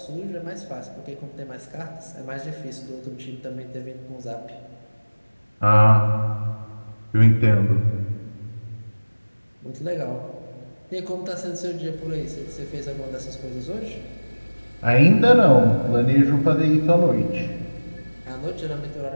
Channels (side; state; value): both; inverted; correlation -1.00